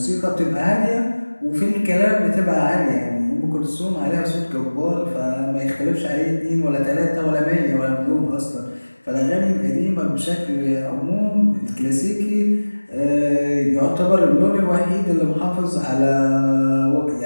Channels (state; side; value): inverted; both; correlation -1.00